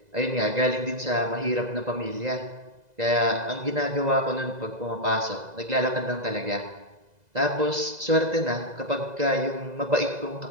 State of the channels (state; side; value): late; left; 2.0 ms